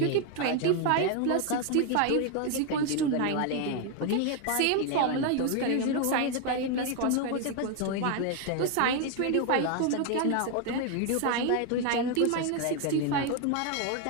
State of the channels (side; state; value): both; different; correlation 0.01